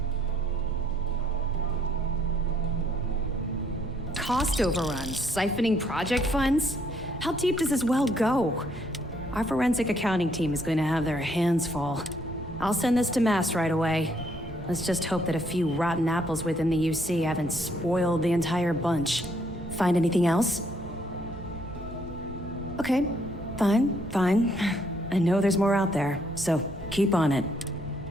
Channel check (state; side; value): normal; both; correlation 0.69